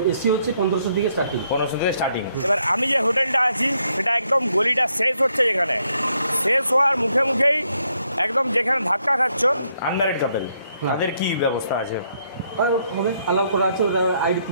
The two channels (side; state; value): both; inverted; correlation -0.74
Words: এসি হচ্ছে 1500 থেকে স্টার্টিং। এবার আমি যে হোটেলটা আছি সেটা একদম গলিটা শেষ হচ্ছে, যেখানে শেষ হওয়ার মুখে মুখেই একদম যেখানে ধাক্কা খাচ্ছ আনম্যারিড কাপল, তাদের কি ব্যবস্থা আছে? হবে অ্যালাউ করা আছে, ওরা আইডি